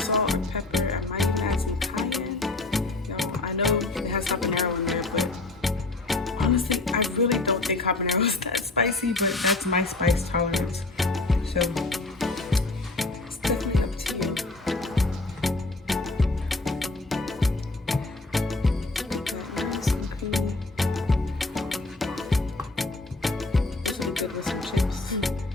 or pepper. I might add some cayenne. You know, I know it has habanero in there, but honestly, I really don't think habanero is that spicy, but that's my spice tolerance. So it's definitely up to you. Nice and creamy. This will be good with some chips.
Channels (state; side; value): quieter; right; 3.1 dB